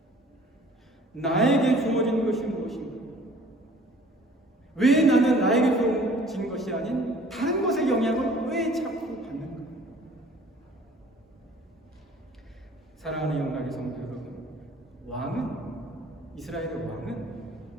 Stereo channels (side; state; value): both; normal; correlation 0.51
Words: 나에게 주어진 것이 무엇인가? 왜 나는 나에게 주어진 것이 아닌 다른 것의 영향을 왜 자꾸 받는가? 사랑하는 영광의 성도 여러분, 왕은, 이스라엘의 왕은